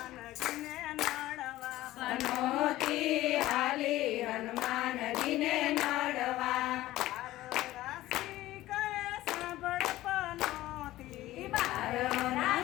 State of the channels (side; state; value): right; quieter; 16.1 dB